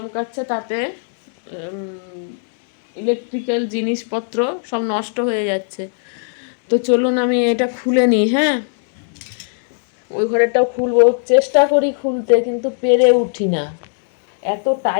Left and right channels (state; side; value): silent; right; digital silence